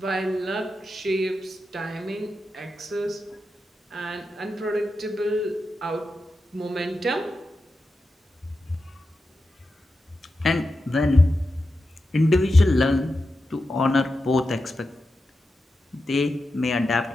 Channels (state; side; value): normal; both; correlation 0.90